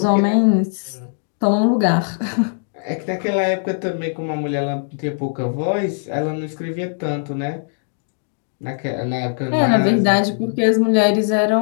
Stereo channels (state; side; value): silent; right; digital silence